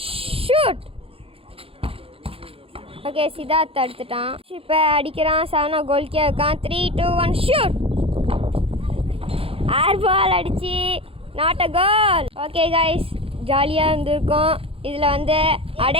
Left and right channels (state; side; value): late; left; 0.27 ms